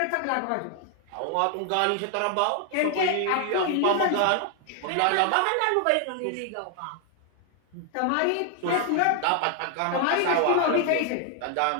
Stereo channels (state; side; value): different; both; correlation 0.00